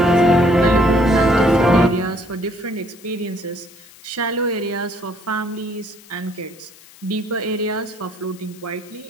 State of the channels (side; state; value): left; noise; hiss, 23 dB below the sound